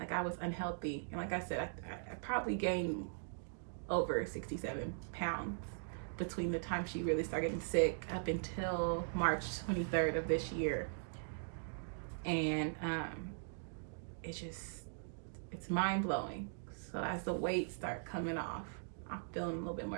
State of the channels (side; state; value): left; silent; digital silence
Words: I was unhealthy. And like I said, I probably gained over 67 pounds between the time she really started getting sick up until March 23rd of this year. And it's mind-blowing. So as the weight start coming off, I'm feeling a little bit